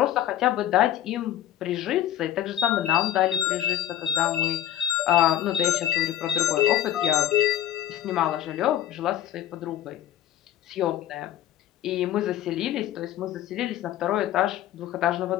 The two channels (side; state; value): right; quieter; 11.8 dB